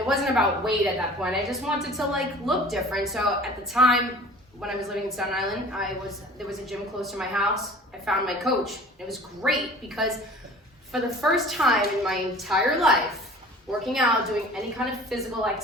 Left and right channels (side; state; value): both; normal; correlation 0.45